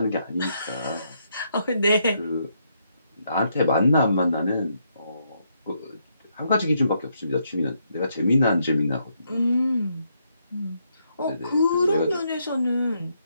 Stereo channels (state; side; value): inverted; both; correlation -0.76